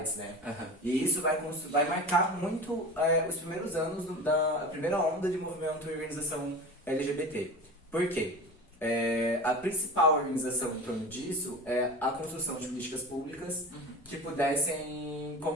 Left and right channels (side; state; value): both; normal; correlation 0.32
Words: né? Uhum. E isso vai marcar muito os primeiros anos da primeira onda de movimento e organização LGBT. Por quê? A principal organização em torno disso é a construção de políticas públicas que pudessem